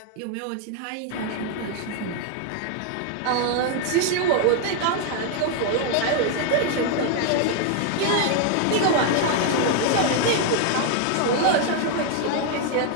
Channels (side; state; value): both; different; correlation 0.00